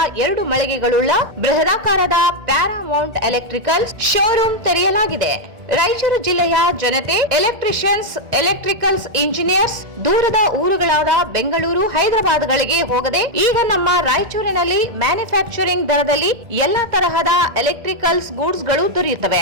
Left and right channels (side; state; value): left; late; 1.9 ms